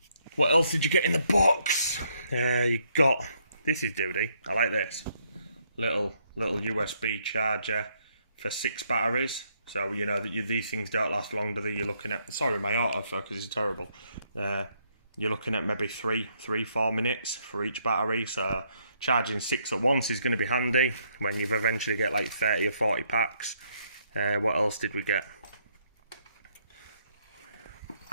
What else did you get in the box? You got, this is duty, I like this. Little USB charger for 6 batteries. So, you know, that these things don't last long, do they? You're looking at, sorry, my autofocus is terrible. You're looking at maybe 3-4 minutes for each battery. So charging 6 at once is going to be handy when you've eventually get like 30 or 40 packs. What else did we get?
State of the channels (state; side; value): inverted; both; correlation -0.72